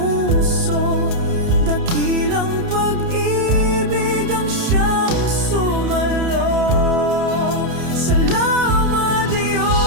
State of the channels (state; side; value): late; left; 30 ms